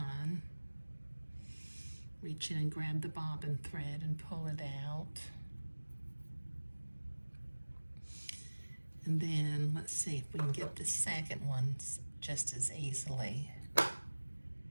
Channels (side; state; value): both; inverted; correlation -1.00